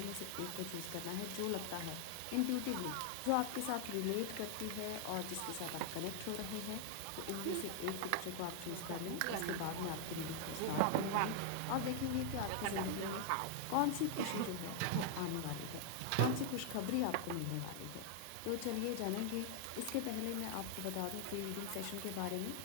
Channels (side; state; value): both; different; correlation 0.00